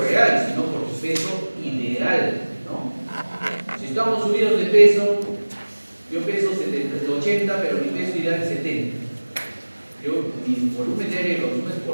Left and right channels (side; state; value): both; inverted; correlation -1.00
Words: real, sino por tu peso ideal, ¿no? Si estamos subidos de peso, yo peso 80, pero mi peso ideal es 70. Mi volumen de aire lo consumo es